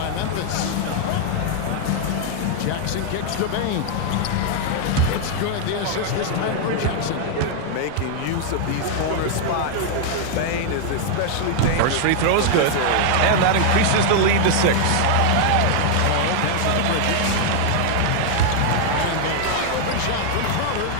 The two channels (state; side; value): different; both; correlation 0.00